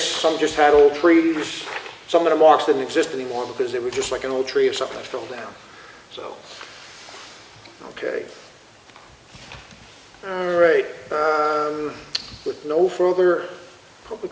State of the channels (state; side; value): identical; both; correlation 1.00